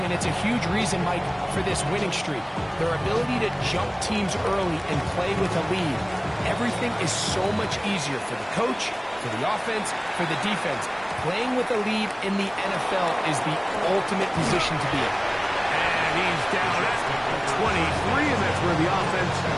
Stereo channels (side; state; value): both; identical; correlation 1.00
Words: and it's a huge reason, Mike, for this winning streak. Their ability to jump teams early and play with a lead. Everything is so much easier for the coach, for the offense, for the defense. Playing with a lead in the NFL is the ultimate position to be in. And he's down at 23, and that's where the offense